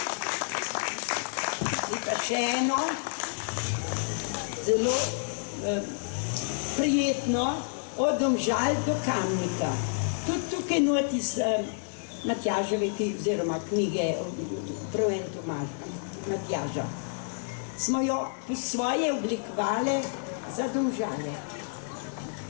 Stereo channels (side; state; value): right; silent; digital silence